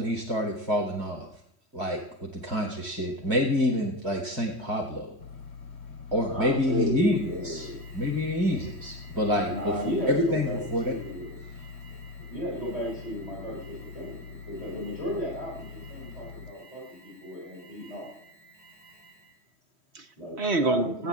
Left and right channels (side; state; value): left; late; 3.1 ms